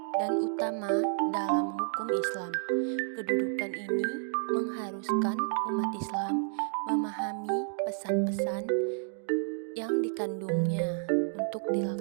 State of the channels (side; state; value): left; silent; digital silence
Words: dan utama dalam hukum Islam. Kedudukan ini mengharuskan umat Islam memahami pesan-pesan yang dikandungnya untuk